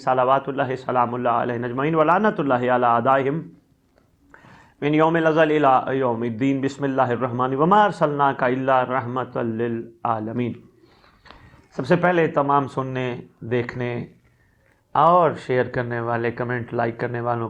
اللہ سلام اللہ علیہ اجمعین ولعنۃ اللہ علی اعدائہم من یوم الازل الی یوم الدین بسم اللہ الرحمن وما ارسلناک الا رحمۃ للعالمین۔ سب سے پہلے تمام سننے، دیکھنے اور شیئر کرنے والے، کمنٹ لائک کرنے والوں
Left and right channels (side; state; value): both; identical; correlation 1.00